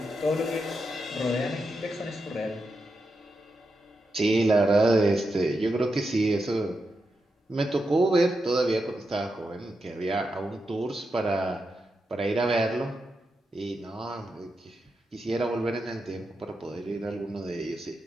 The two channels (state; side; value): normal; both; correlation 0.87